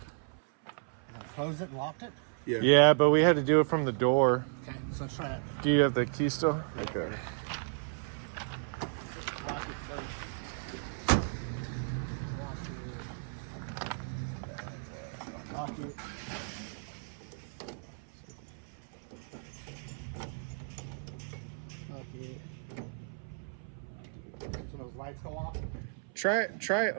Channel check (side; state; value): left; silent; 55 dB below the other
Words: Closed it and locked it? Yeah. Yeah, but we had to do it from the door. Okay, so let's try that. Do you have the key still? Okay. Lock it first. Lock it. Lock it. So those lights go off? Try